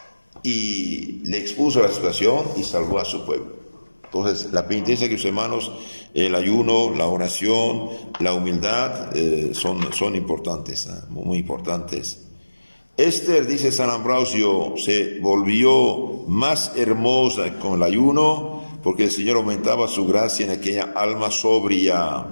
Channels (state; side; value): inverted; both; correlation -1.00